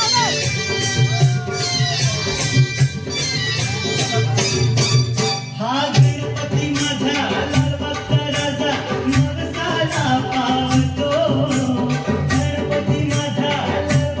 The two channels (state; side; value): identical; both; correlation 1.00